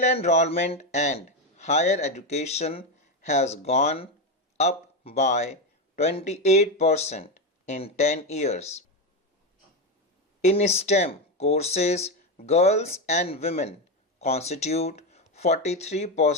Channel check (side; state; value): both; normal; correlation 0.12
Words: enrollment and higher education has gone up by 28% in 10 years. In STEM courses, girls and women constitute